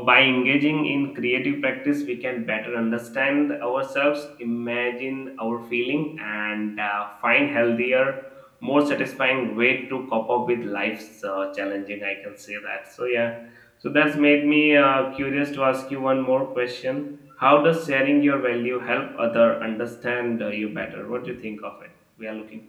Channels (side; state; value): both; identical; correlation 1.00